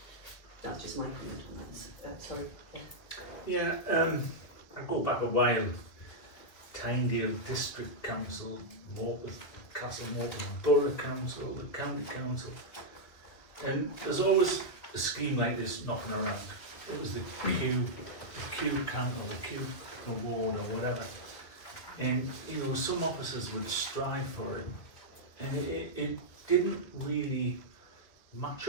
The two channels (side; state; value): right; late; 2.1 ms